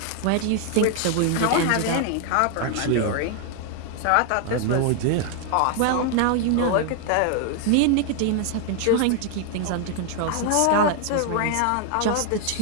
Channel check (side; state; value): both; different; correlation 0.00